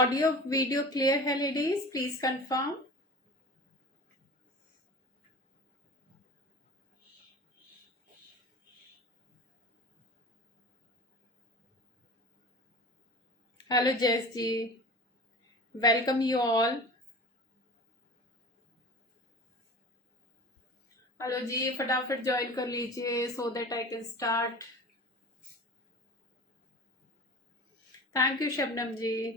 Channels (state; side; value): normal; both; correlation 0.36